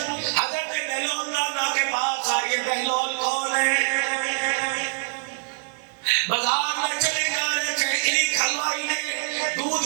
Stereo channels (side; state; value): left; silent; digital silence